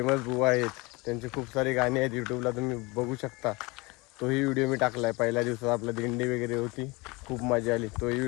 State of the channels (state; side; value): quieter; right; 25.0 dB